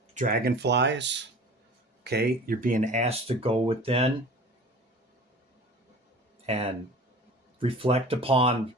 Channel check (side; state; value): both; normal; correlation 0.41